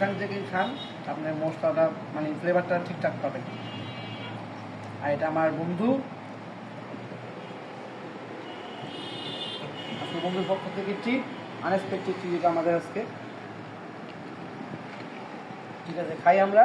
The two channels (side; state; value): both; identical; correlation 1.00